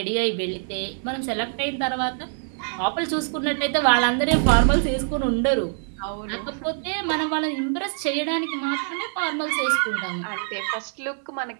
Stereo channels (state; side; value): silent; left; 62 dB below the other